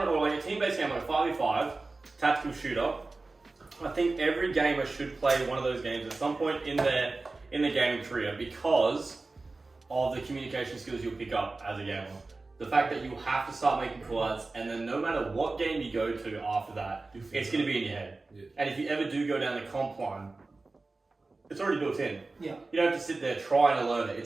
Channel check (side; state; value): left; quieter; 3.5 dB